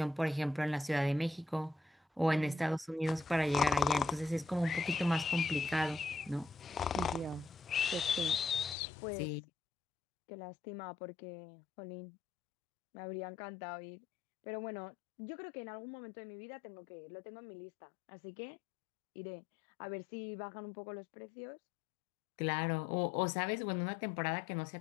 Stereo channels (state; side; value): drops out; right; at 8.8 s